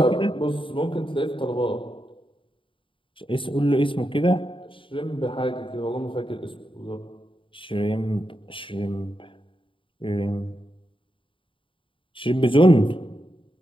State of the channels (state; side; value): late; right; 0.25 ms